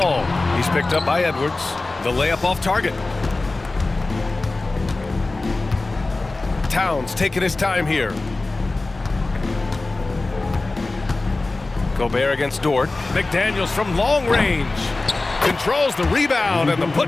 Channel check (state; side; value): quieter; right; 3.2 dB